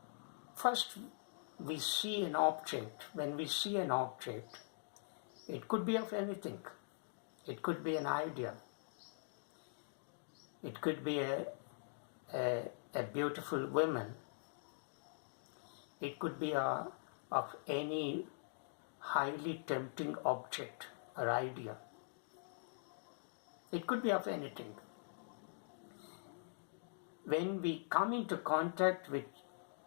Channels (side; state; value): right; silent; digital silence